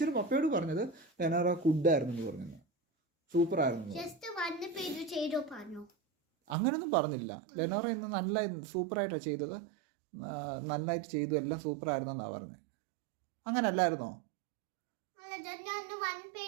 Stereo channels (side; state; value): left; drops out; at 6.6 s